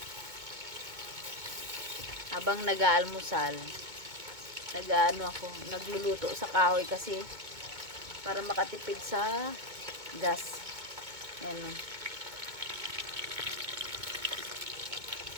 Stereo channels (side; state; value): left; late; 2.2 ms